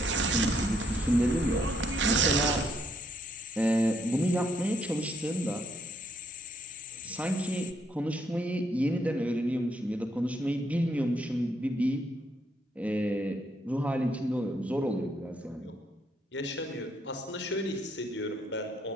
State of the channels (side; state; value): both; normal; correlation 0.73